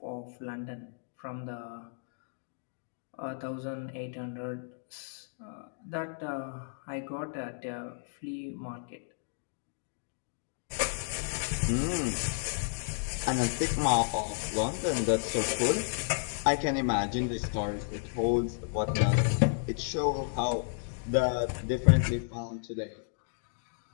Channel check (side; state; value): right; silent; digital silence